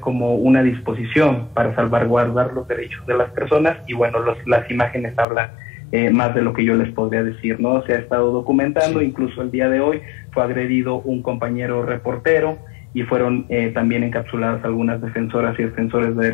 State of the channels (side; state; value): right; drops out; at 5.2 s